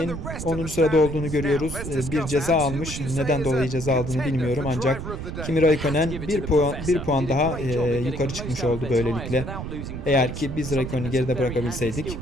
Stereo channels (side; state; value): right; noise; rumble, 7 dB below the sound